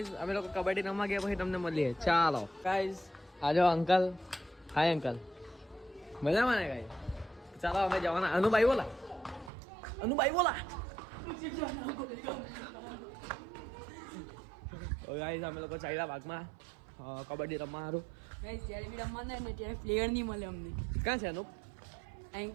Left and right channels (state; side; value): drops out; left; at 9.5 s